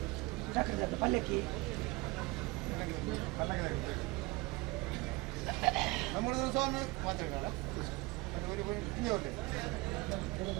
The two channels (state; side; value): quieter; left; 23.1 dB